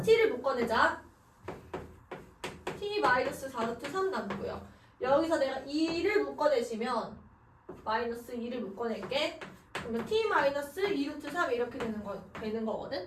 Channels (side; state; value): both; identical; correlation 1.00